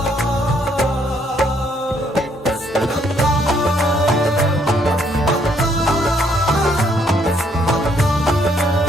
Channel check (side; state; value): both; normal; correlation 0.69